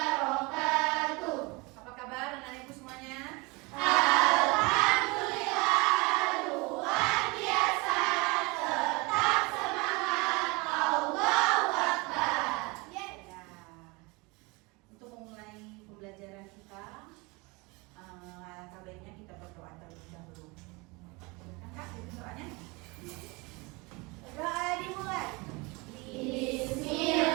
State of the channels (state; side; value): quieter; left; 26.4 dB